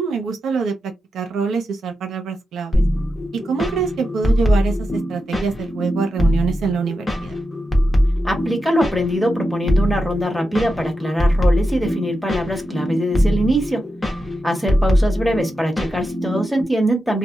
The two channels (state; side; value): normal; both; correlation 0.89